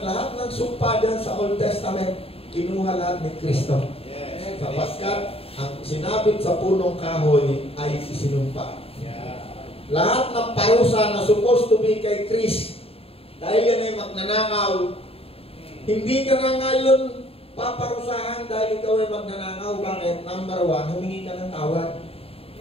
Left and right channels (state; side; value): late; right; 0.28 ms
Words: lahat ng sumpa dyan sa Old Testament, kinuha lahat ni Kristo. Yes. Sapagkat ang sinabit sa punong kahoy ay isinumpa. Yeah. Lahat ng parusa na supposed to be kay Chris, dahil yan ay magnanakaw, hindi ka na ngayon paparusahan dahil ikaw ay magnanakaw. Bakit? Number one, humingi ka ng tawad.